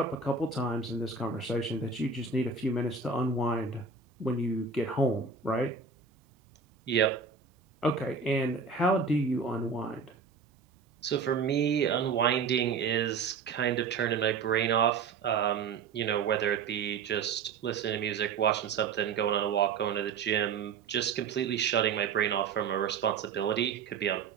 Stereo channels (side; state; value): left; quieter; 5.4 dB